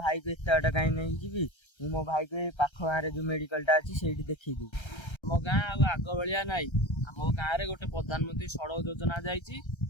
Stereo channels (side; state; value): right; late; 1.3 ms